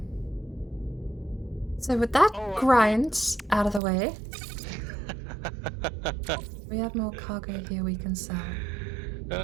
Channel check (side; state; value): left; drops out; at 3.8 s